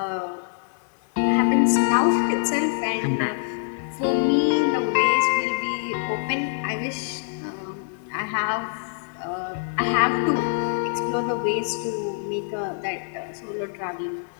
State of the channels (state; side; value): silent; right; 62 dB below the other